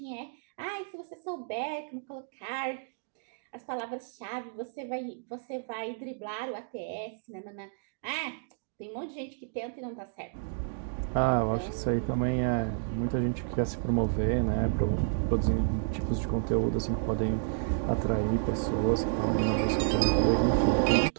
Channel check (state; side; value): silent; left; digital silence